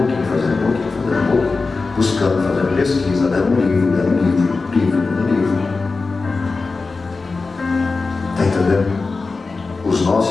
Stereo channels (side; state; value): right; quieter; 4.0 dB